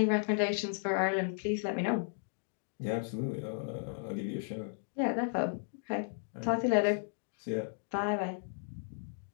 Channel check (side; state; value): right; silent; digital silence